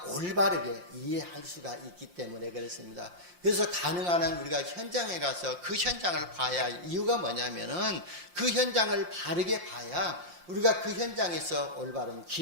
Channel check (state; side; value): late; left; 5.7 ms